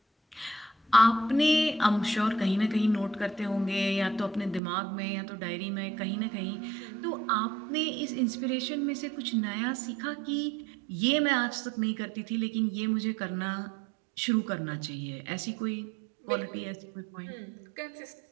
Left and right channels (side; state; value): left; drops out; at 4.6 s